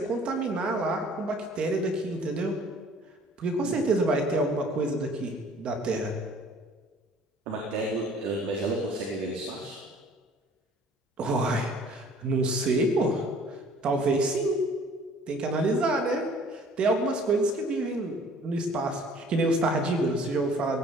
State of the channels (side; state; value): both; normal; correlation 0.53